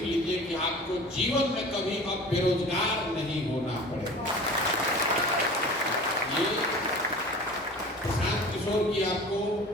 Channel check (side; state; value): both; normal; correlation 0.40